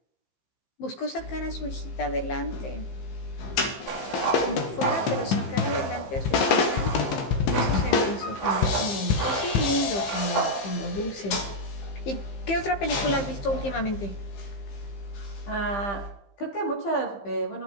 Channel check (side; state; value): right; late; 15 ms